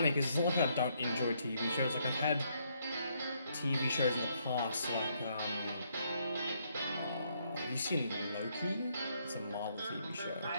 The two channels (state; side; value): inverted; both; correlation -0.72